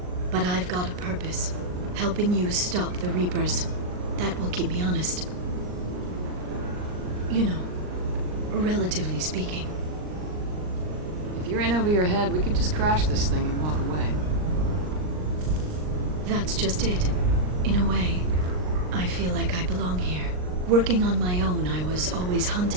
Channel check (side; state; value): left; late; 39 ms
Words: But I've got a purpose. Helping you stop the Reapers. That will keep me honest. You know, relatively speaking. If you're in over your head, we could just crash this thing and walk away. That's just it. In a way, I feel like I belong here. Working on my own, I was always